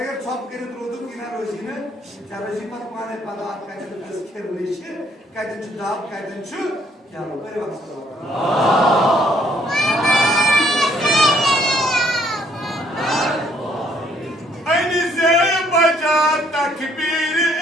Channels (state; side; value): normal; both; correlation 0.66